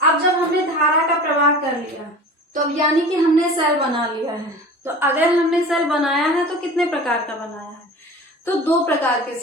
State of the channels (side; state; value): both; normal; correlation 0.38